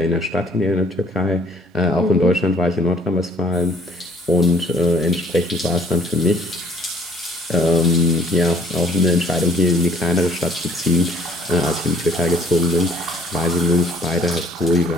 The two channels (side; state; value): both; normal; correlation 0.58